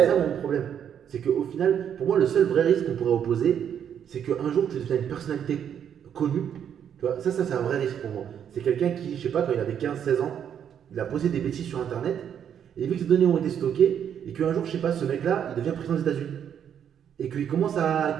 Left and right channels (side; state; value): left; quieter; 8.8 dB